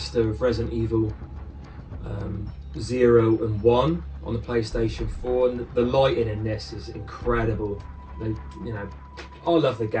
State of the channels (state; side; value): identical; both; correlation 1.00